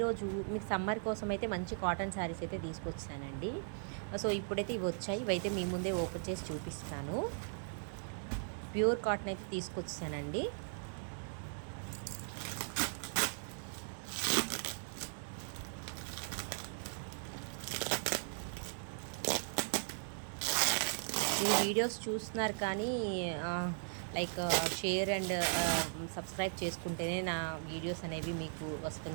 మీకు summer కోసం అయితే మంచి కాటన్ శారీస్ అయితే తీసుకొచ్చానండి. సో ఇప్పుడైతే ఇవి వచ్చాయి. ఇవైతే మీ ముందే ఓపెన్ చేసి చూపిస్తాను. ప్యూర్ కాటన్ అయితే తీసుకొచ్చానండి. ఈ వీడియోస్ చూస్తున్నారు కానీ లైక్ షేర్ అండ్ సబ్స్క్రైబ్ చేసుకుంటేనే నా వీడియోస్ అనేవి మీకు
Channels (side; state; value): left; silent; digital silence